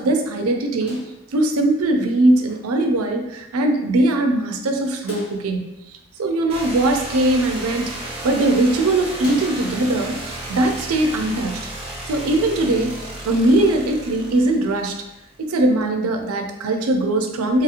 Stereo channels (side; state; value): both; normal; correlation 0.49